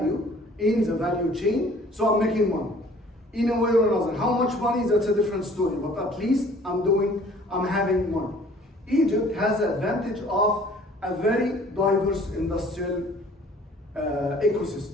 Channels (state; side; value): normal; both; correlation 0.53